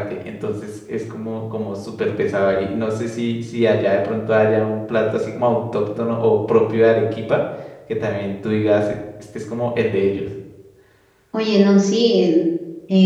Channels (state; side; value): identical; both; correlation 1.00